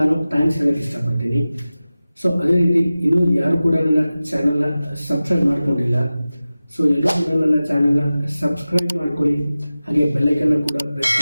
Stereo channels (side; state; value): both; inverted; correlation -0.96